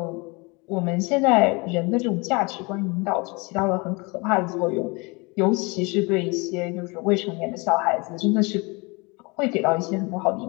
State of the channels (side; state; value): right; quieter; 27.6 dB